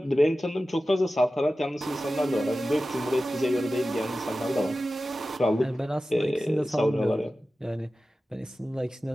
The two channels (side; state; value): both; normal; correlation 0.94